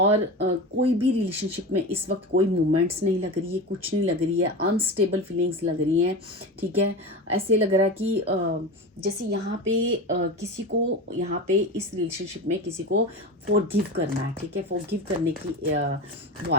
कोई भी रिलेशनशिप में इस वक्त कोई मूवमेंट्स नहीं लग रही है, कुछ नहीं लग रही है, अनस्टेबल फीलिंग्स लग रही हैं, ठीक है। ऐसे लग रहा है कि जैसे यहाँ पे किसी को यहाँ पे इस रिलेशनशिप में किसी को फॉरगिव करना है, ठीक है। फॉरगिव करने की वो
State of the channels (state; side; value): normal; both; correlation 0.27